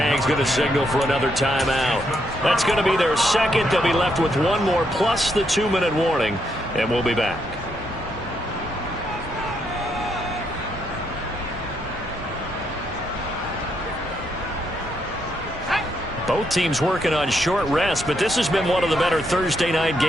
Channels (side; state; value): both; normal; correlation 0.77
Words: going to signal for another timeout. That's going to be their second. They'll be left with 1 more plus the 2-minute warning. And we'll be back. Both teams working on short rest, but this has been one of the better Thursday night